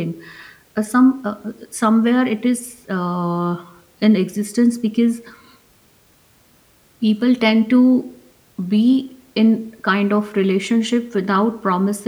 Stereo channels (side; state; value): both; identical; correlation 1.00